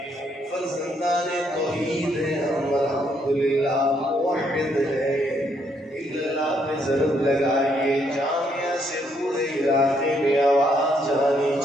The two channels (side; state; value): both; normal; correlation 0.72